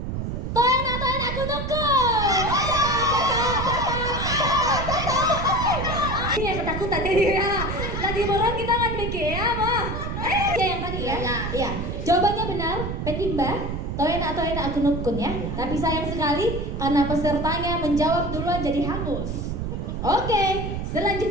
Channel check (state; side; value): noise; right; rumble, 4 dB below the sound